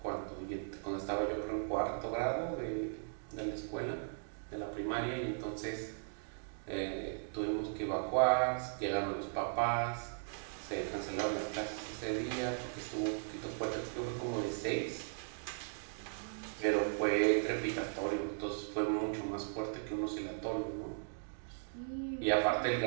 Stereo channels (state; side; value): silent; left; digital silence